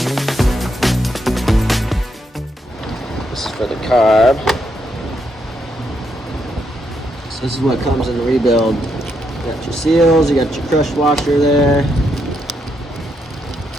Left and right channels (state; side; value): normal; both; correlation 0.78